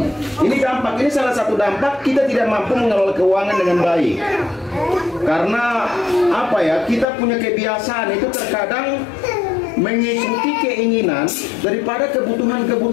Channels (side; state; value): right; drops out; at 7.1 s